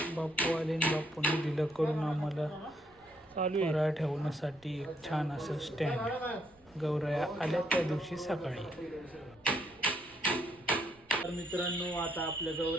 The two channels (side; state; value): right; noise; rumble, 30 dB below the sound